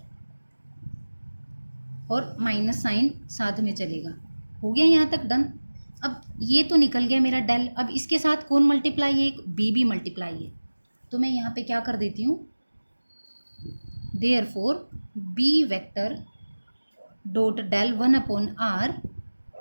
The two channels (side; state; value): both; inverted; correlation -1.00